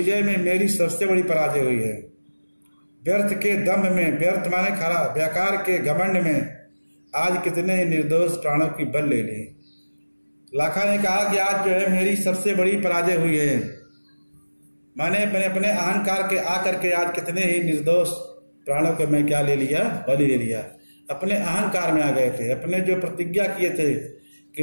में मेरी सबसे बड़ी पराजय हुई है। व्यर्थ के दम्भ में, व्यर्थ माने खरा, बेकार के घमंड में आज कितने निर्दोष प्राणों की बल ले ली। लाखा ने कहा कि आज जो है मेरी सबसे बड़ी पराजय हुई है। मैंने अपने अहंकार के आकर के आज कितने ही निर्दोष प्राणों को मैं क्या ले लिया? बलि ले लिया। अपने अहंकार में आ गए थे। अपने जो प्रतिज्ञा किए थे कि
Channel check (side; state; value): both; inverted; correlation -1.00